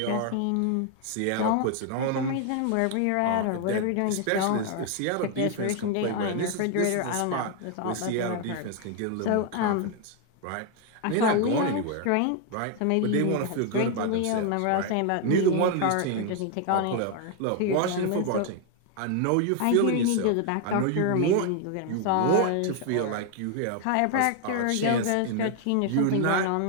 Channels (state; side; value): different; both; correlation 0.01